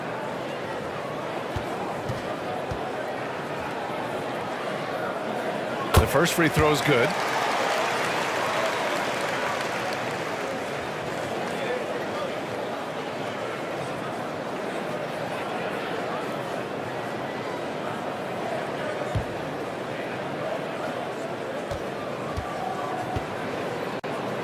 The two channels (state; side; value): identical; both; correlation 1.00